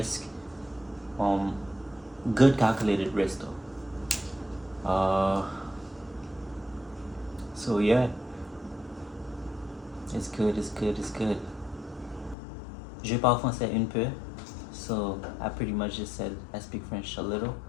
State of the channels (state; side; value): drops out; right; at 12.4 s